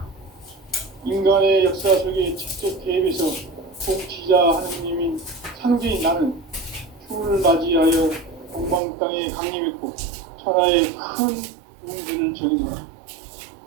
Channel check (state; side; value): drops out; left; at 8.8 s